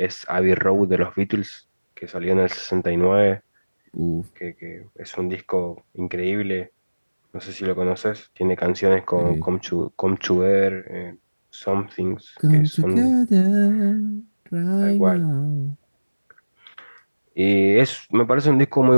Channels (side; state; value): both; inverted; correlation -1.00